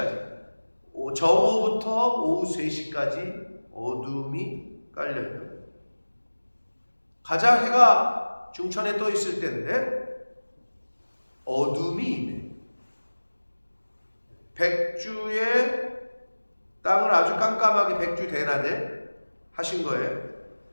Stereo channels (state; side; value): inverted; both; correlation -1.00